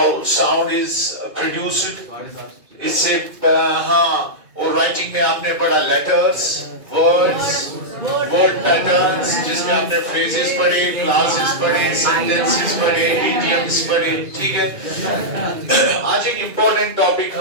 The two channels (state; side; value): late; left; 2.4 ms